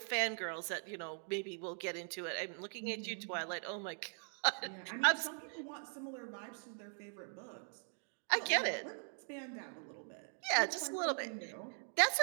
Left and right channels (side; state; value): left; silent; 51 dB below the other